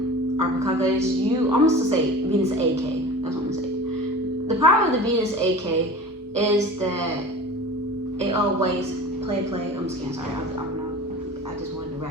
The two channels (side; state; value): both; normal; correlation 0.37